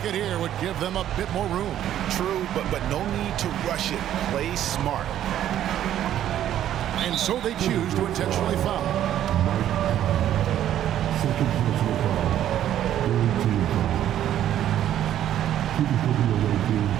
here would give them a bit more room. True, but no need to rush it. Play smart. And so they choose to intentionally foul. Second personal foul. Team foul. Keeping for the away team.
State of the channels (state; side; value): quieter; left; 11.4 dB